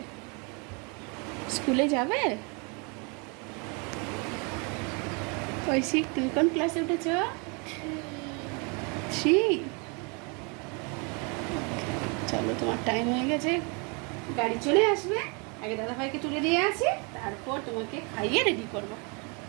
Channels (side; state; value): left; quieter; 32.9 dB